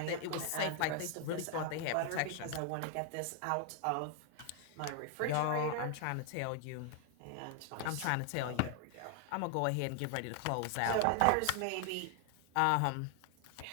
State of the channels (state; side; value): different; both; correlation 0.00